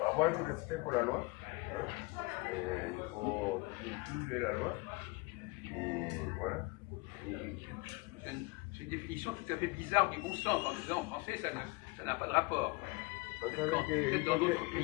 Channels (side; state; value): right; quieter; 24.9 dB